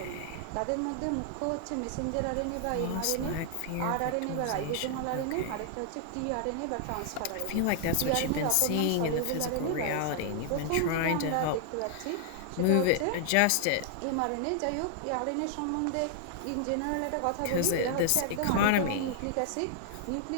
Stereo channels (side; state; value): both; different; correlation 0.00